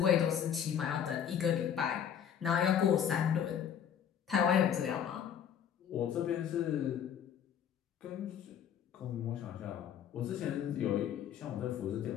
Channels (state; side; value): quieter; right; 8.8 dB